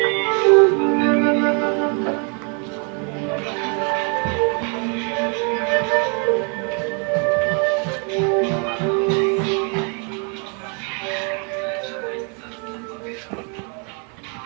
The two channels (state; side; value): quieter; left; 37.7 dB